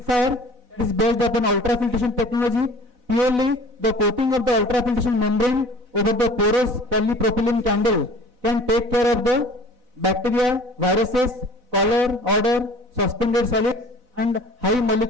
that is based upon ultrafiltration technology. Purely the coating of the ultrafiltration membrane over the porous polypropylene candle can take care of the bacteria, viruses, color, odor, suspended solids and high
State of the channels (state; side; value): late; left; 4.0 ms